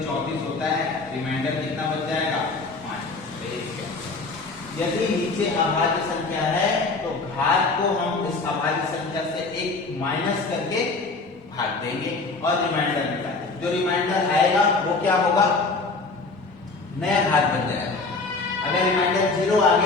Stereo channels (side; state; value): right; quieter; 3.8 dB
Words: 34 होता है, रिमाइंडर कितना बच जाएगा? 5। यदि नीचे अभाज्य संख्या है तो घात को हम इस अभाज्य संख्या से 1 माइनस करके भाग देंगे और रिमाइंडर निकालेंगे। जो रिमाइंडर आएगा वो क्या होगा? नया घात बन जाएगा। अगर रिमाइंडर 0 आ